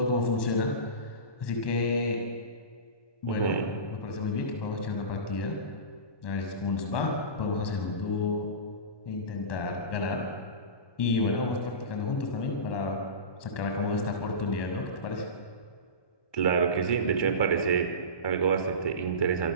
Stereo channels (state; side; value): late; right; 1.2 ms